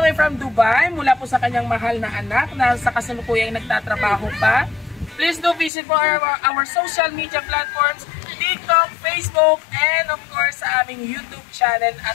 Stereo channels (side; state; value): right; drops out; at 5.7 s